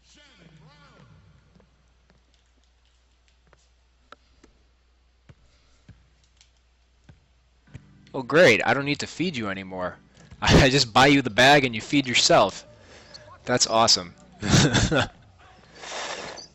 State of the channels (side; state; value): both; identical; correlation 1.00